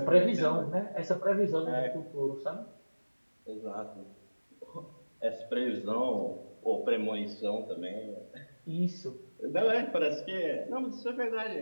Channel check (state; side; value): inverted; both; correlation -1.00